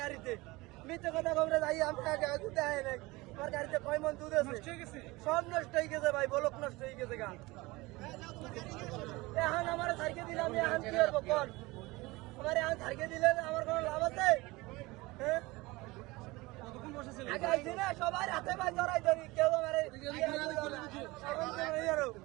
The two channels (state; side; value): quieter; left; 21.9 dB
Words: গাড়িতে। মিথ্যে কথা খবরে যাই, আমি দুধে আয় নাই। আমার গাড়িতে 6 মণ দুধ আছে, সব নষ্ট হয়ে গেছে ভাই, বলক নষ্ট হয়ে গেছে গা। এখন আমার সাইকে দিলে আমি এখন কি করবো? কোন আমার এখন সাইকে দিলে আমার কোনো লাভ আছে? হ্যাঁ, আগে আইছি না, সবাই হাতে পায়ে জড়াই ধরি, কেউ আমার